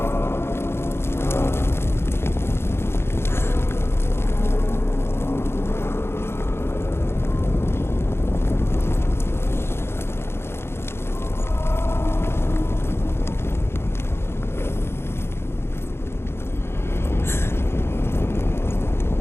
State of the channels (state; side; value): late; right; 0.12 ms